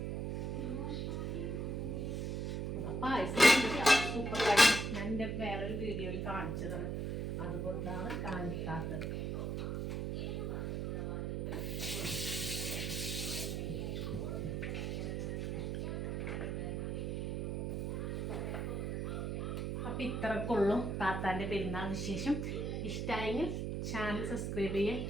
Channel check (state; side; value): noise; right; hum, 1 dB below the sound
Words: പായസം സൂപ്പർ കാര്യം. ഞാൻ എൻ്റെ വേറൊരു വീഡിയോയിൽ കാണിച്ചതാണ്, അതുകൊണ്ടാണ് കാണിക്കാത്തത്. അപ്പം ഇത്രക്കുള്ളൂ താത്താൻ്റെ പെരുന്നാൾ വിശേഷം. ഇഷ്ടമായെങ്കിൽ ചാനൽ സബ്സ്ക്രൈബ് ചെയ്യാം.